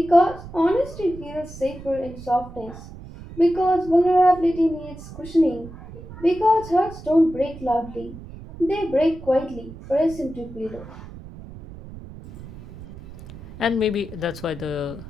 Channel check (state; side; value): noise; right; rumble, 15 dB below the sound